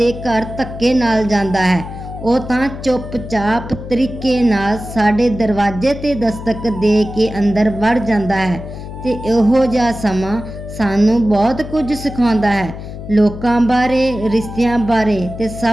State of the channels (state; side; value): noise; left; hum, 10 dB below the sound